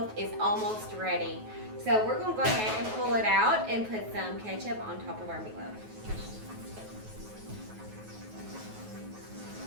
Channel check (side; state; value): left; late; 9.3 ms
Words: is almost ready. So we're going to go ahead and pull it out and put some ketchup on top of our meatloaf.